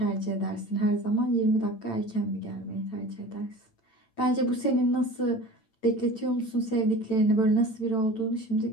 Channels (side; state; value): right; late; 8.9 ms